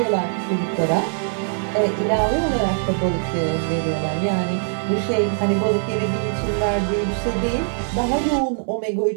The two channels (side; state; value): left; silent; 64 dB below the other